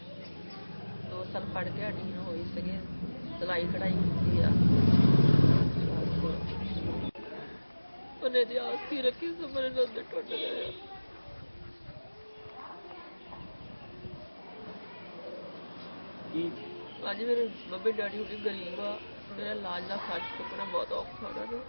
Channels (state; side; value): inverted; both; correlation -1.00